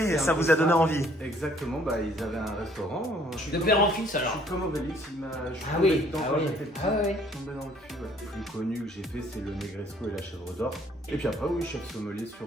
et ça vous a donné envie. Exactement, ils avaient un restaurant. De père en fils Je alors. suis comme Obélix, je suis Ah tombé oui, dedans ah quand oui. j'étais petit. Ah oui. Je suis tombé dans le cul, ouais. Le plus connu que j'ai fait, c'est le Negresco et la chèvre d'or. Et puis après, oui, chef sommelier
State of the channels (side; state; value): both; normal; correlation 0.61